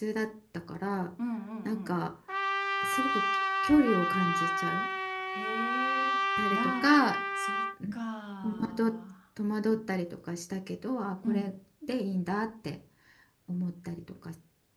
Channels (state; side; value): identical; both; correlation 1.00